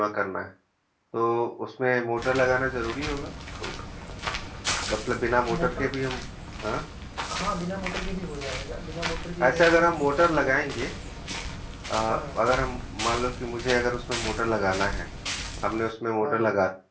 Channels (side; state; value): both; identical; correlation 1.00